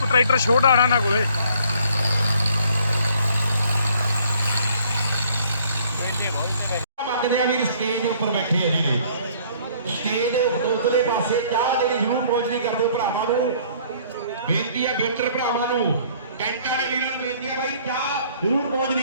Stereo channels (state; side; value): inverted; both; correlation -0.59